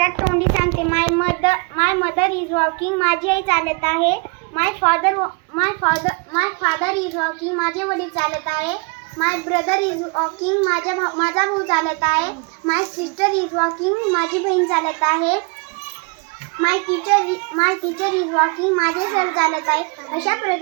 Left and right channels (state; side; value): quieter; left; 32.8 dB